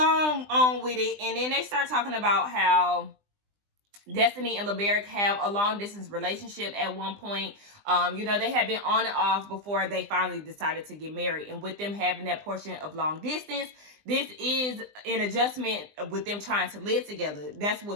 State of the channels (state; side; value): late; left; 20 ms